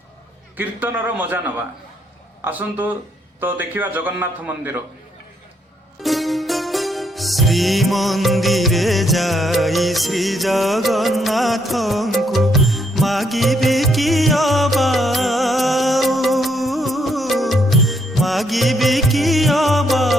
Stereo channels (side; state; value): both; normal; correlation 0.73